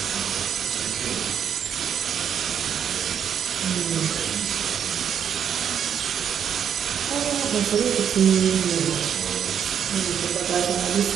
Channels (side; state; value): left; quieter; 8.4 dB